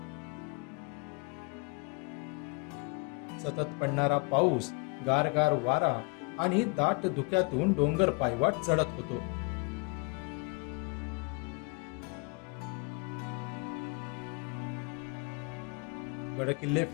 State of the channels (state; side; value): quieter; right; 32.8 dB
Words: सतत पडणारा पाऊस, गारगार वारा आणि दाट धुक्यातून डोंगर पायवाट चढत होतो. गडकिल्ले